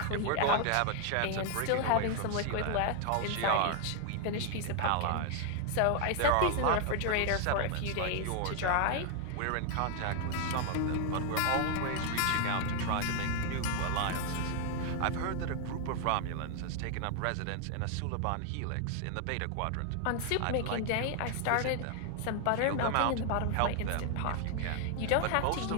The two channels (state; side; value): different; both; correlation 0.00